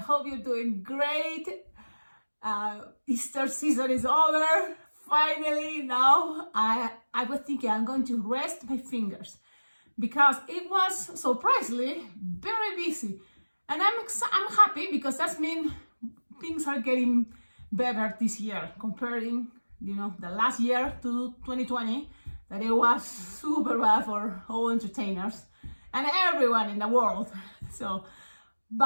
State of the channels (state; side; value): inverted; both; correlation -1.00